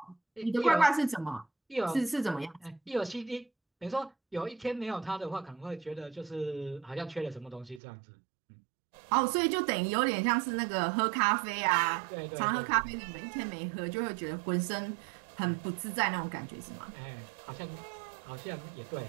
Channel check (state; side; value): drops out; left; at 7.8 s